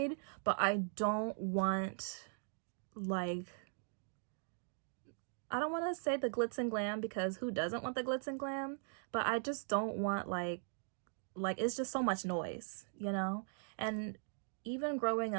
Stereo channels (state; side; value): silent; left; digital silence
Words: but I don't want, like, I don't want to say the glitz and glam, because who doesn't want the glitz and glam? But I just don't want like it's just so much noise, you know? And even growing